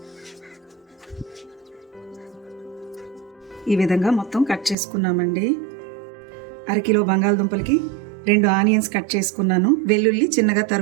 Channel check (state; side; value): drops out; left; at 4.8 s